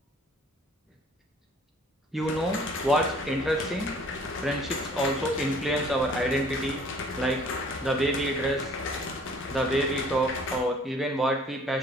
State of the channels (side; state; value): both; normal; correlation 0.54